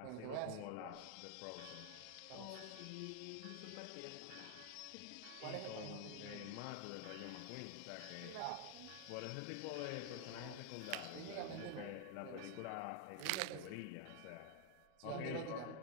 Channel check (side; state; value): both; different; correlation 0.00